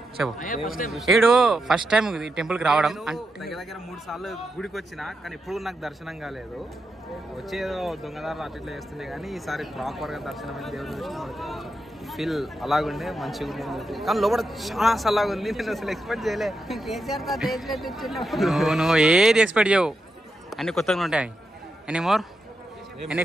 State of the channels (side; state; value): both; normal; correlation 0.86